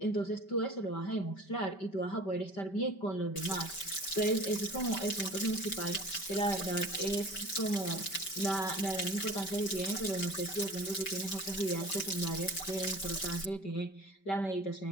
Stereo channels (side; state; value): right; late; 5.2 ms